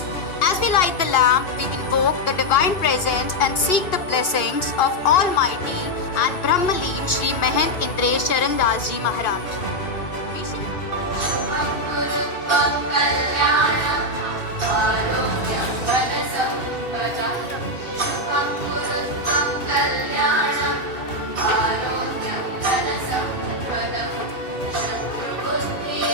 As we light the lamp, we invoke the divine presence and seek the blessings of Almighty and Brahmaleen Shri Mahant Indresh Charan Das Ji Maharaj.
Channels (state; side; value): late; right; 2.8 ms